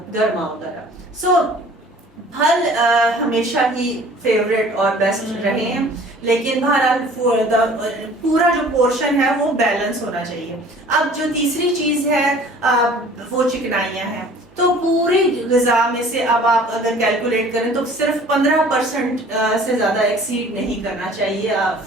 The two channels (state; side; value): normal; both; correlation 0.49